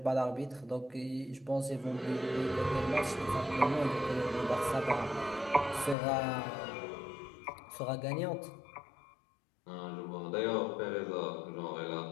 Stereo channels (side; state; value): right; drops out; at 6.0 s